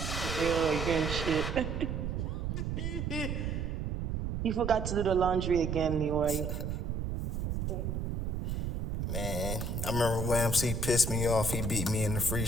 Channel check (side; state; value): right; noise; rumble, 2 dB below the sound